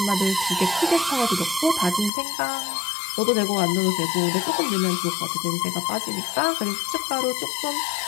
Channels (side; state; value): right; drops out; at 2.1 s